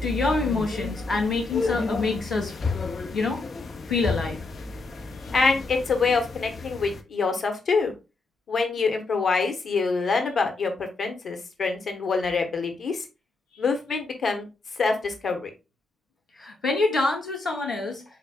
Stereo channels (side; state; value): right; quieter; 3.7 dB